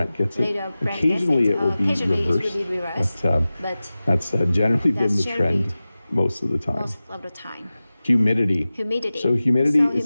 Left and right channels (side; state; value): both; inverted; correlation -0.96